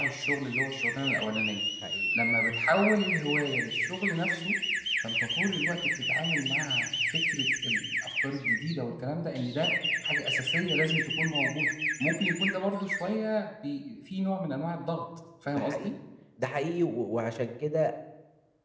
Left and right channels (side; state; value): both; identical; correlation 1.00